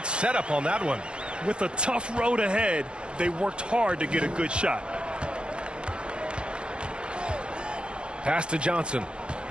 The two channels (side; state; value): left; late; 0.055 ms